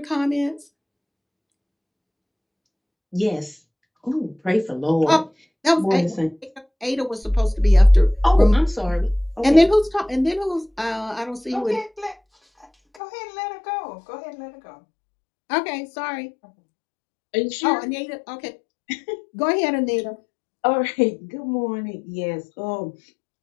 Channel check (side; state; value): right; drops out; at 13.0 s